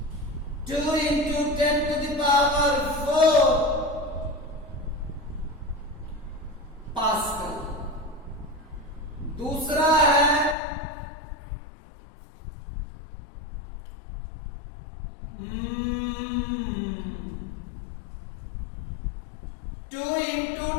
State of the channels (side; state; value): right; drops out; at 10.6 s